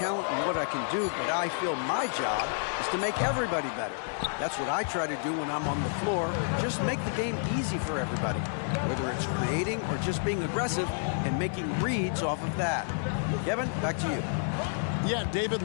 and what I can do, but I feel my job is to make everybody better. That's what I try to do when I'm on the floor. Just make the game easy for everybody, whether it's creating or just being aggressive and making reads off of that. Kevin, back to you. Yeah, David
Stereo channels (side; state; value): right; silent; digital silence